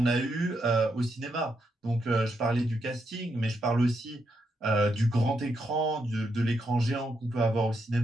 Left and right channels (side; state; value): both; normal; correlation 0.81